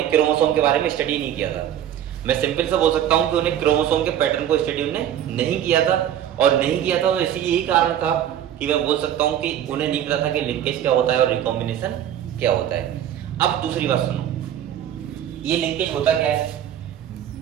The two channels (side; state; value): left; quieter; 10.6 dB